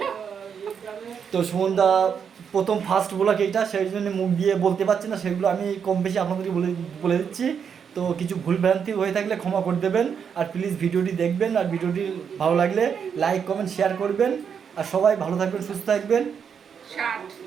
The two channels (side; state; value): left; quieter; 7.1 dB